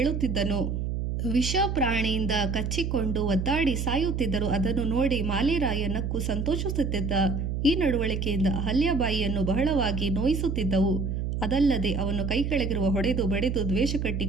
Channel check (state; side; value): noise; right; hum, 2 dB below the sound